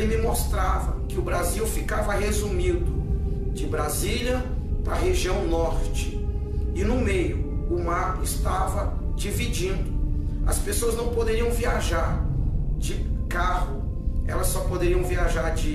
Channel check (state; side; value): identical; both; correlation 1.00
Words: me mostrava que o Brasil ficava resumido de Brasília para a região norte. E no meio, o mar estava dividindo. As pessoas não poderiam viajar de carro, elas só poderiam viajar